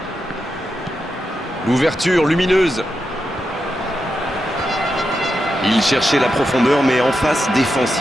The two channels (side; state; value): both; normal; correlation 0.87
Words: L'ouverture lumineuse. Il cherchait la profondeur, mais en face,